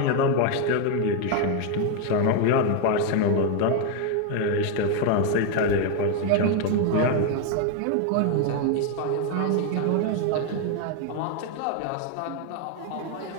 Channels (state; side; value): different; both; correlation 0.01